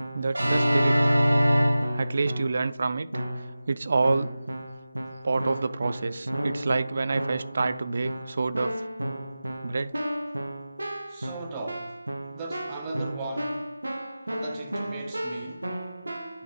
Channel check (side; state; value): both; inverted; correlation -0.96